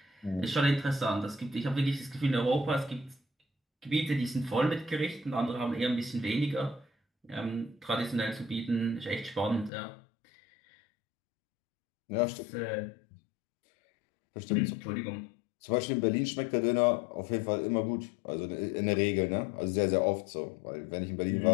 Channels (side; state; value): right; drops out; at 9.7 s